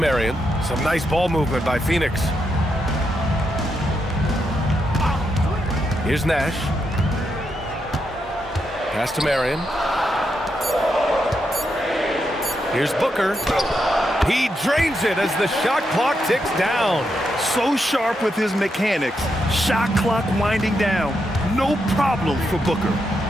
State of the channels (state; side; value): normal; both; correlation 0.82